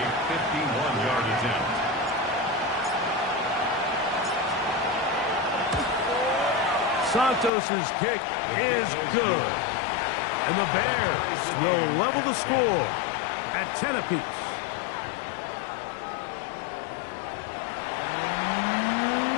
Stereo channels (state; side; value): drops out; right; at 7.5 s